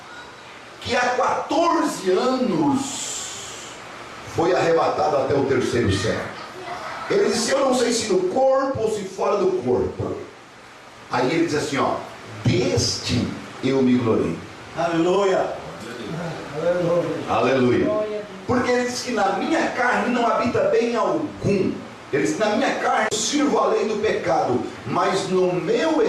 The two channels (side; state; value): both; identical; correlation 1.00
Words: que há 14 anos foi arrebatado até o terceiro céu. Ele disse, eu não sei se no corpo ou se fora do corpo. Aí ele diz assim, ó, deste eu me glorio. Aleluia. Aleluia. Porque ele diz que na minha carne não habita bem algum. Ele diz, na minha carne eu sirvo a lei do pecado, mas no meu